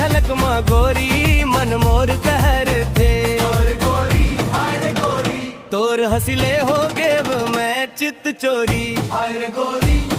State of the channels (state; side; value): identical; both; correlation 1.00